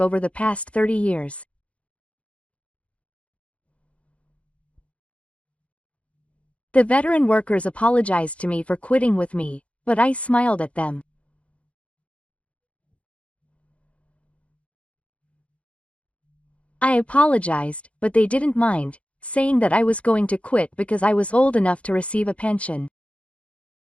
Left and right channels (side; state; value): right; late; 0.062 ms